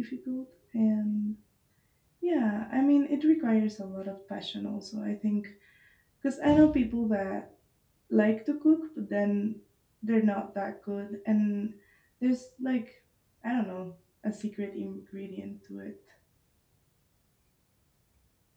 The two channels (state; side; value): identical; both; correlation 1.00